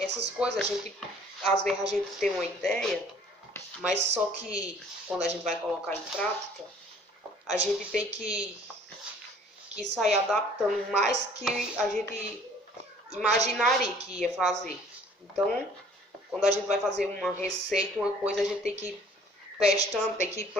coisas, às vezes a gente tem uma ideia, mas só que quando a gente vai colocar em prática, a gente tem que sair adaptando mais que a gente imaginaria que ia fazer. Então, quando a gente vai fazer uma receita, uma coisa, a gente tem que ir testando, tem que ir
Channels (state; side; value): normal; both; correlation 0.54